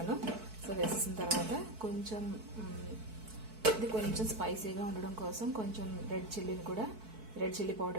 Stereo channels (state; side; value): late; left; 4.6 ms